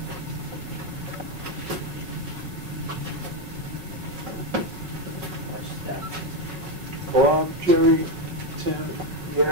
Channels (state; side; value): late; left; 5.4 ms